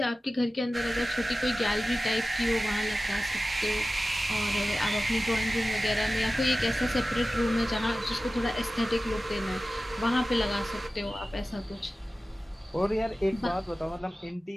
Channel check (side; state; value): both; normal; correlation 0.95